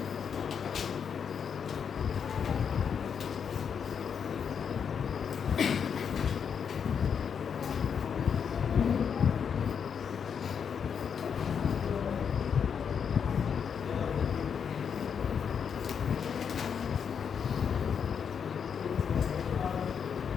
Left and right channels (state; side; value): quieter; right; 7.1 dB